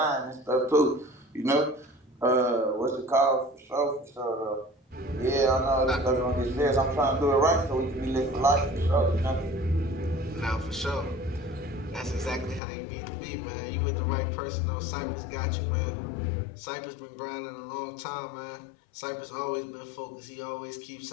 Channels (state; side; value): drops out; right; at 12.6 s